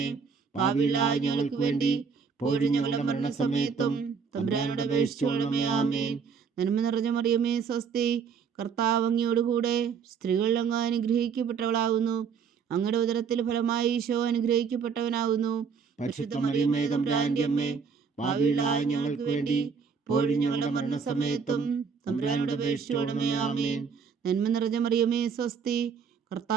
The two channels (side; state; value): left; quieter; 6.1 dB